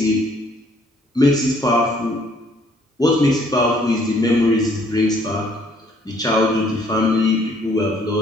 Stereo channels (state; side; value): normal; both; correlation 0.63